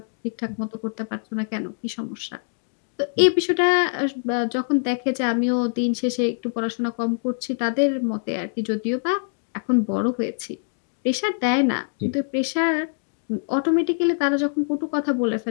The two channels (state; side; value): silent; right; digital silence